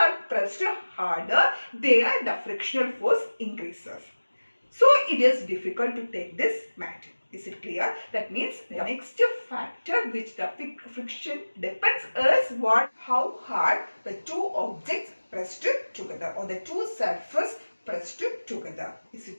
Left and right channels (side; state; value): both; inverted; correlation -1.00